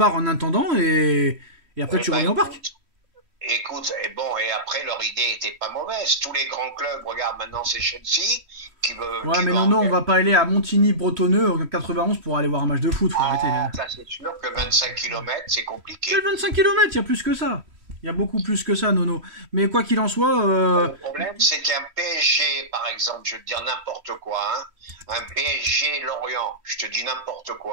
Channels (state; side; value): late; left; 3.1 ms